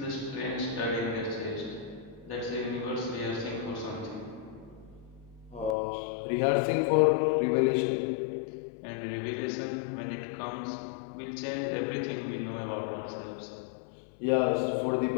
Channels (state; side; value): drops out; right; at 5.8 s